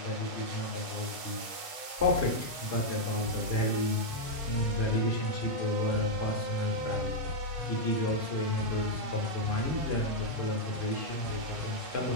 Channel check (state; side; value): late; left; 8.2 ms